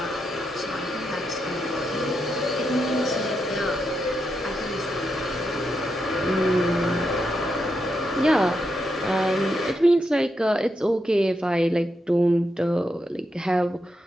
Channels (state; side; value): normal; both; correlation 0.83